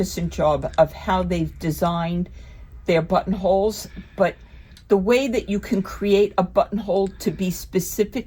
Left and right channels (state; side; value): identical; both; correlation 1.00